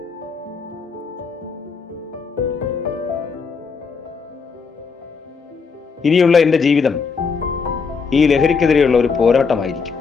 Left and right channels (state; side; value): quieter; right; 5.3 dB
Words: ഇനിയുള്ള എന്റെ ജീവിതം ഈ ലഹരിക്കെതിരെയുള്ള ഒരു പോരാട്ടമായിരിക്കും.